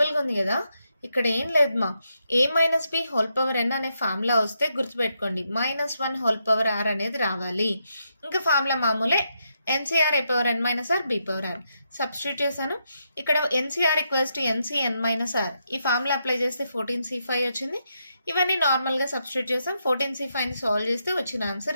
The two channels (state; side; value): inverted; both; correlation -0.81